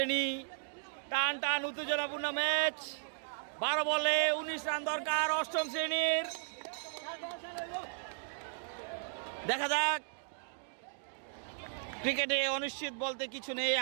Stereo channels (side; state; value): left; silent; digital silence